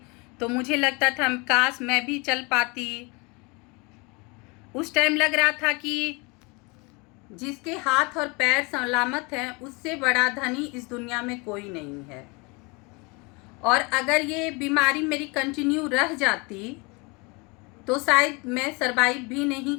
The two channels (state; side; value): quieter; right; 28.4 dB